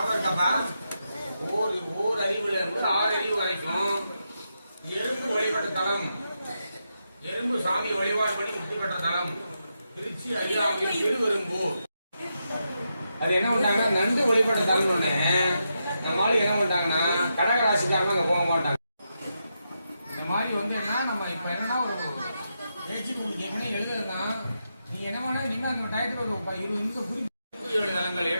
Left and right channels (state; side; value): inverted; both; correlation -0.85